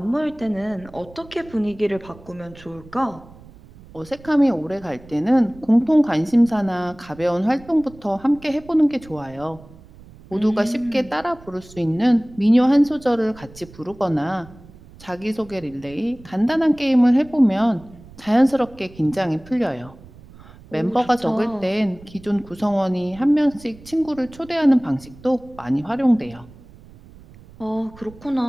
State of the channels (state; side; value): noise; right; rumble, 21 dB below the sound